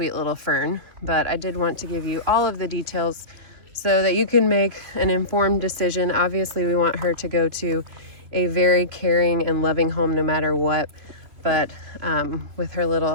little Fern, but I did want to give you all of the details so that you can make an informed decision. Obviously, we want her to go to a very caring and loving home no matter what, but with her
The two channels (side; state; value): left; late; 3.0 ms